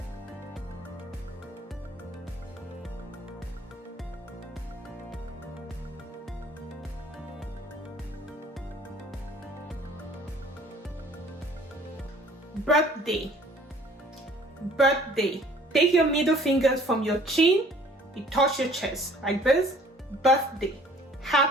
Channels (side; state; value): both; normal; correlation 0.54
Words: Birthday. Take your middle fingers from your chin, you touch your chest like this. Birthday.